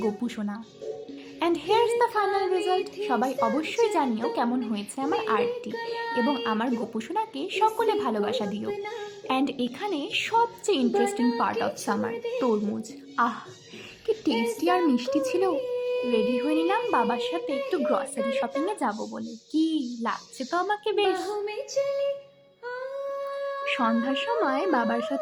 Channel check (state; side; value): identical; both; correlation 1.00